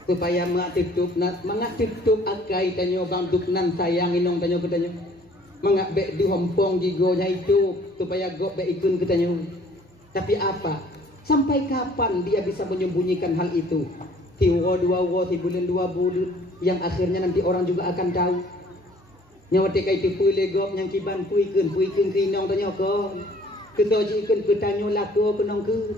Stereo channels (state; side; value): normal; both; correlation 0.56